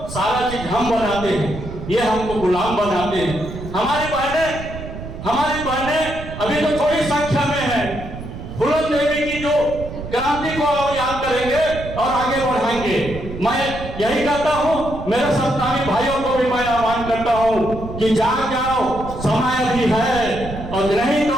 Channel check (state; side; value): noise; right; rumble, 10 dB below the sound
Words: सारा चीज हम बनाते हैं, ये हमको गुलाम बनाते हैं। हमारी बहनें अभी तो थोड़ी संख्या में है, फूलन देवी की जो क्रांति को याद करेंगे और आगे बढ़ाएंगे। मैं यही कहता हूं, मेरे सत्तावी भाइयों को भी मैं आह्वान करता हूं कि जाग जाओ, समय अभी है, और नहीं